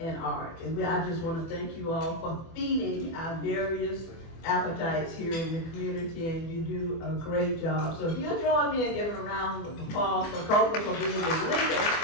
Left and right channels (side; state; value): right; late; 24 ms